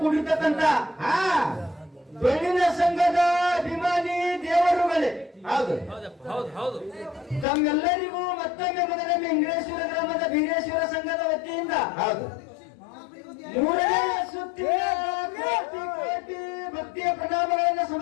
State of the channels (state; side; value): drops out; right; at 7.5 s